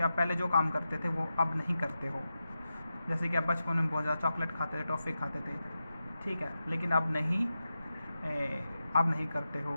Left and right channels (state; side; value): inverted; both; correlation -0.91